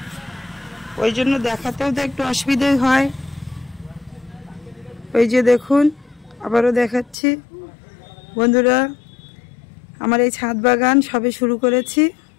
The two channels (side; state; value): right; drops out; at 7.2 s